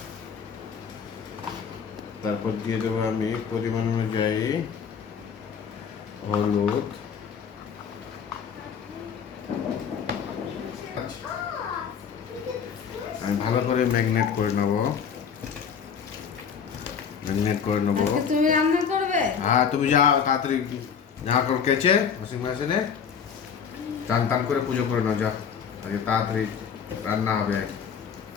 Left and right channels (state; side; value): quieter; right; 7.0 dB